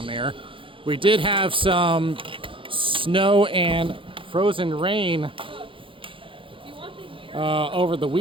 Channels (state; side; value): late; left; 0.25 ms